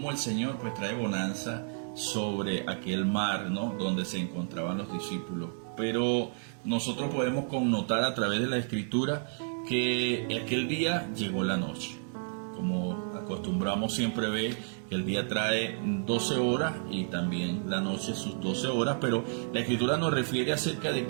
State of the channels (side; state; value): left; silent; 57 dB below the other